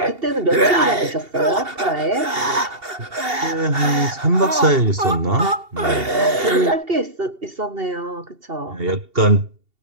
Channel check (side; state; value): left; late; 2.7 ms